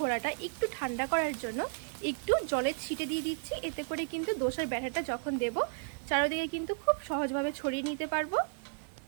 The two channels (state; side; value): silent; left; digital silence